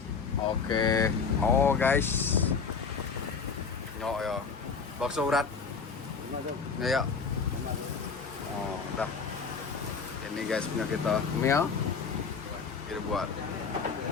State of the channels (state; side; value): quieter; right; 5.4 dB